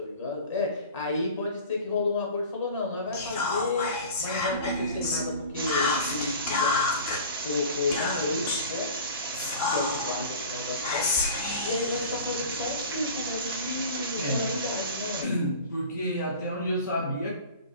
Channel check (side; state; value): both; inverted; correlation -0.38